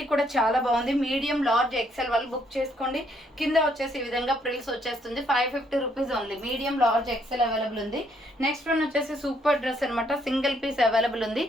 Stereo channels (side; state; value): both; normal; correlation 0.70